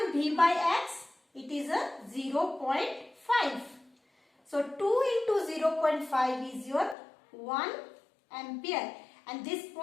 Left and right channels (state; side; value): drops out; right; at 7.0 s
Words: V by X? It is a 0.5. So 2 into 0.5 is your 1 ampere. And this